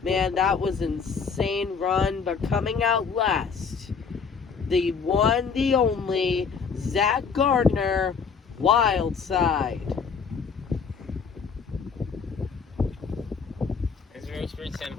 Man, that was an insane run. But coming out last, the one, the only, Zack Garner, Wild Side. It's very experienced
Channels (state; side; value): quieter; right; 5.8 dB